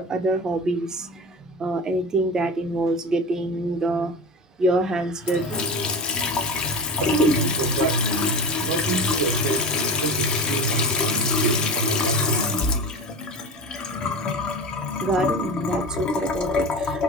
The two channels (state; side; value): normal; both; correlation 0.29